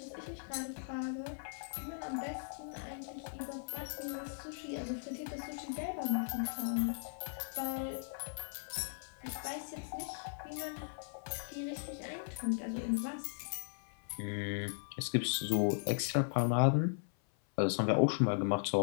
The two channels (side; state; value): right; silent; 53 dB below the other